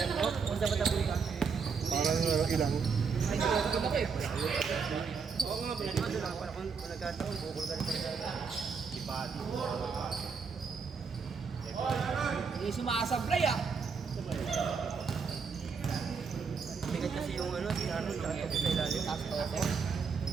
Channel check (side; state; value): left; quieter; 5.6 dB